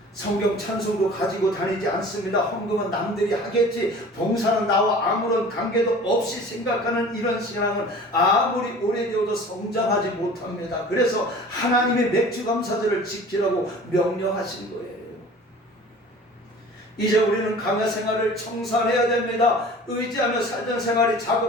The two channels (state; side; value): normal; both; correlation 0.43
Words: 성경 찬송도 가지고 다니지 않습니다. 헌금은 남들이 하겠지, 봉사는 나와 아무런 관계도 없이 생각하는 이런 신앙은 아무리 오래되어도 성장하지 못합니다. 그래서 하나님의 맥주 감사절을 지키라고 명령하신 거예요. 이제 우리는 강야 생활을 청산해야 됩니다. 의지하며 살던 생활이